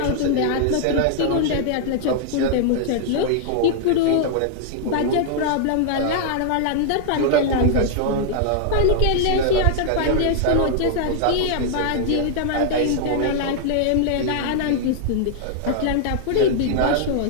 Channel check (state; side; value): different; both; correlation -0.01